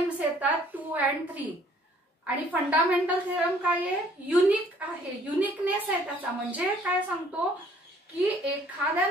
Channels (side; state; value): both; normal; correlation 0.59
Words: येतात 2 and 3. आणि फंडामेंटल थेरम काय आहे युनिक आहे, युनिकनेस आहे त्याचा. म्हणजे काय सांगतो की एखाद्या